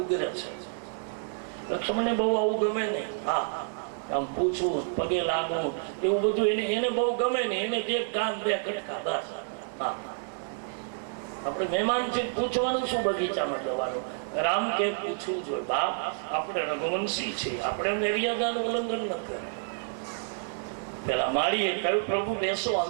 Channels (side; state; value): left; silent; digital silence